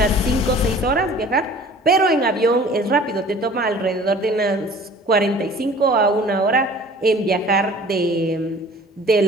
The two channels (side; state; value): both; normal; correlation 0.47